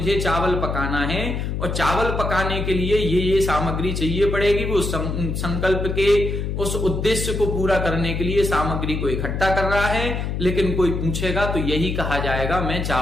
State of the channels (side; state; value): left; noise; hum, 2 dB below the sound